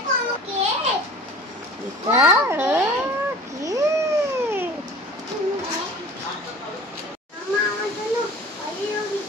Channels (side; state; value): both; normal; correlation 0.43